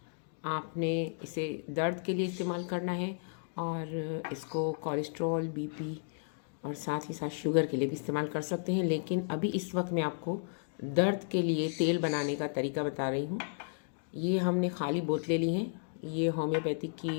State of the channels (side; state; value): right; silent; digital silence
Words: आपने इसे दर्द के लिए इस्तेमाल करना है, और इसको कोलेस्ट्रॉल, बीपी और साथ ही साथ शुगर के लिए भी इस्तेमाल कर सकते हैं। लेकिन अभी इस वक्त मैं आपको दर्द के लिए तेल बनाने का तरीका बता रही हूँ। ये हमने खाली बोतलें ली हैं। ये होम्योपैथिक